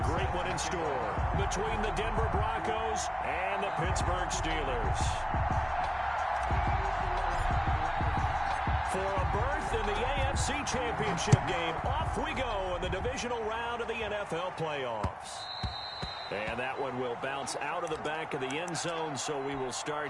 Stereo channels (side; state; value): both; identical; correlation 1.00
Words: great one in store between the Denver Broncos and the Pittsburgh Steelers. For a berth in the AFC Championship game, off we go in the divisional round of the NFL playoffs. And that one will bounce out of the back of the end zone, so we will start